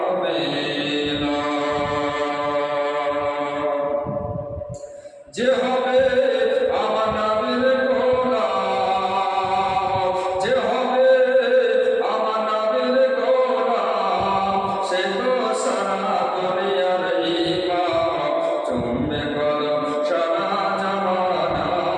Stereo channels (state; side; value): identical; both; correlation 1.00